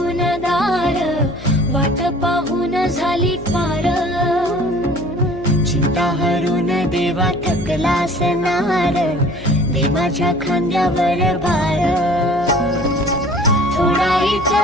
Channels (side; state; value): left; noise; hum, 15 dB below the sound